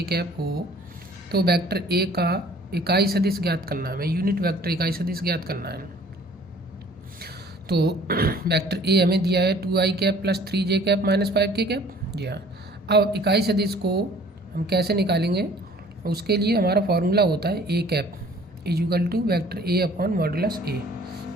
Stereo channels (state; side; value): normal; both; correlation 0.52